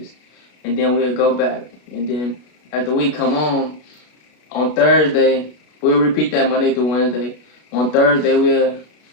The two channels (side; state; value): right; late; 33 ms